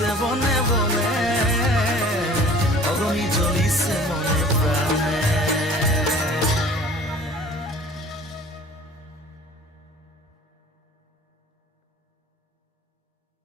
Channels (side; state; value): both; normal; correlation 0.48